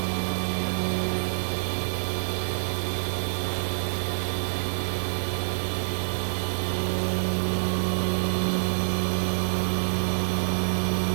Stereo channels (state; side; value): silent; left; digital silence